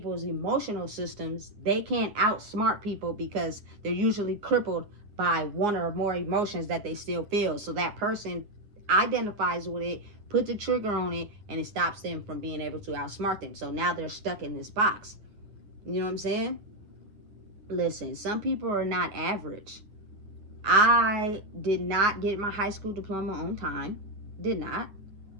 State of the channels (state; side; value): late; left; 9.6 ms